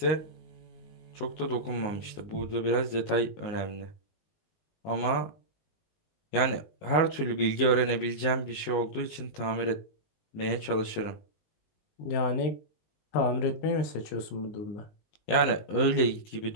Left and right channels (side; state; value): right; late; 19 ms